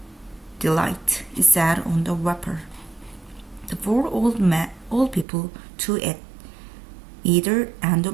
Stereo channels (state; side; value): drops out; left; at 5.2 s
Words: delight, it said on the wrapper. The four old people, two at either end